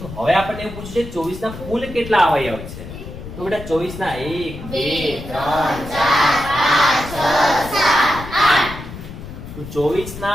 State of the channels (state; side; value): noise; left; rumble, 12 dB below the sound